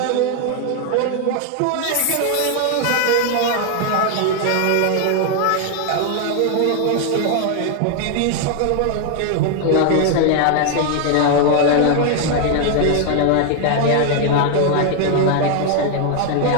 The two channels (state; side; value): different; both; correlation 0.00